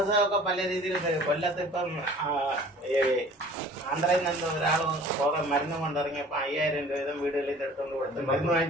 പല രീതിയിൽ കൊല്ലത്ത് ഇപ്പം ആന്ധ്രയിൽ നിന്ന് ഒരാൾ മരുന്ന് കൊണ്ടിറങ്ങിയപ്പോ 5000 രൂപ വീതം വീടുകളിൽ എടുത്തുകൊണ്ട് കൊടുത്ത് മരുന്ന്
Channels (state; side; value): normal; both; correlation 0.48